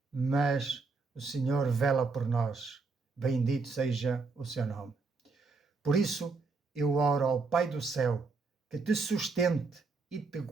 Mas o Senhor vela por nós. Bendito seja o seu nome. Por isso, eu oro ao Pai do céu que te sustente e te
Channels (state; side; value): quieter; left; 4.2 dB